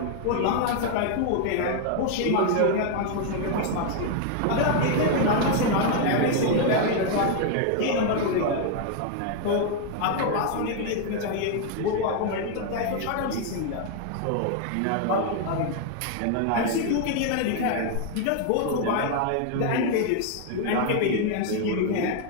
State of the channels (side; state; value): both; different; correlation 0.00